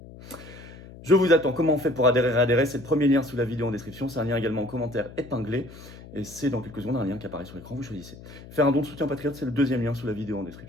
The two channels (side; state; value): left; noise; hum, 17 dB below the sound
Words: Je vous attends. Comment on fait pour réadhérer? C'est le premier lien sous la vidéo en description. C'est un lien également en commentaire épinglé. Et c'est dans quelques secondes un lien qui apparaît sur l'écran. Vous choisissez. Faire un don de soutien patriote, c'est le 2e lien sous la vidéo en